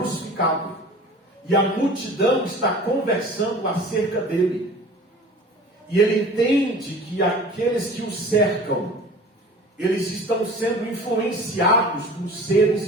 e a multidão está conversando acerca dele, e ele entende que aqueles que o cercam, eles estão sendo influenciados por seres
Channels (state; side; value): normal; both; correlation 0.42